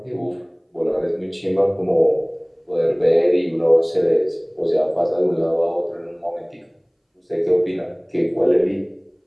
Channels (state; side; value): identical; both; correlation 1.00